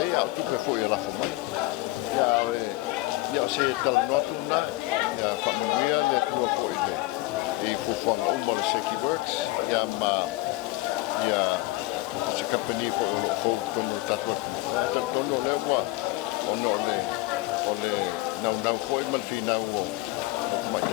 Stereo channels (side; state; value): right; quieter; 20.0 dB